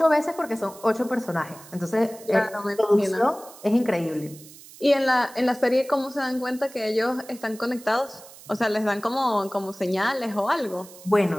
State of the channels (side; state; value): right; noise; hiss, 19 dB below the sound